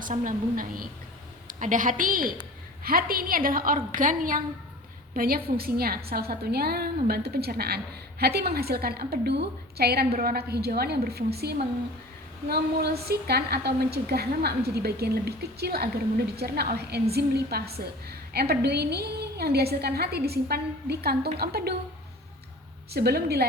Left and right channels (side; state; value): both; normal; correlation 0.40